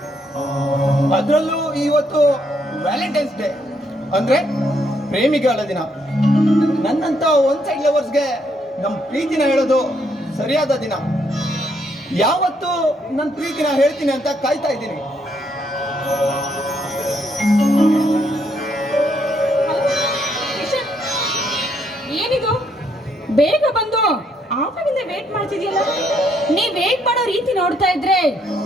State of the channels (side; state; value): both; normal; correlation 0.73